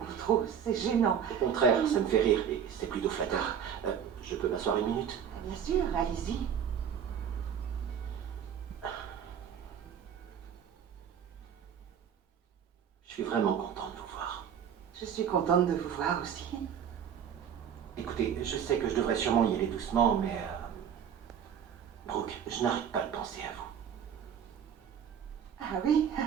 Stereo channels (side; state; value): left; quieter; 8.3 dB